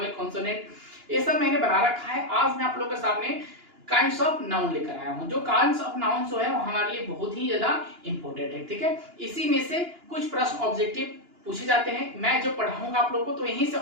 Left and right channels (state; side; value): late; left; 2.9 ms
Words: consonant, ये सब मैंने बना रखा है। आज मैं आप लोगों के सामने काइंड्स ऑफ नाउन लेकर आया हूं। जो काइंड्स ऑफ नाउन जो है वो हमारे लिए बहुत ही ज्यादा इंपॉर्टेंट है, ठीक है। इसी में से कुछ प्रश्न ऑब्जेक्टिव पूछे जाते हैं। मैं जो पढ़ाऊंगा आप लोगों को तो यहीं से